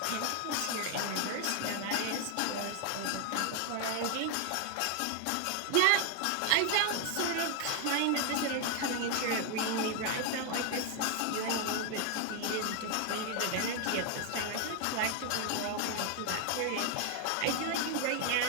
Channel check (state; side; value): different; both; correlation 0.00